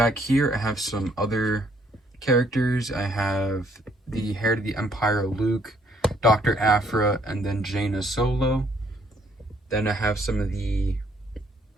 here I have some other characters. I have the Heir to the Empire Luke, Dr. Aphra, and then Jaina Solo. Then I have some of the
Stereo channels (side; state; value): both; normal; correlation 0.67